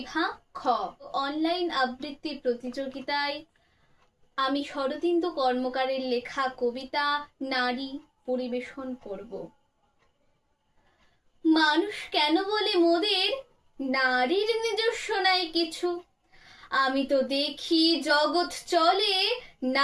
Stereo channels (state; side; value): identical; both; correlation 1.00